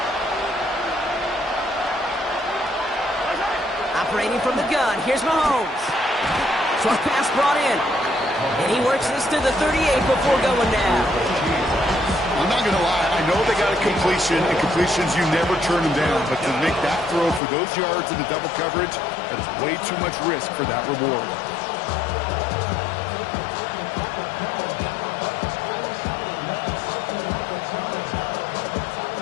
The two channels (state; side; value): drops out; right; at 17.4 s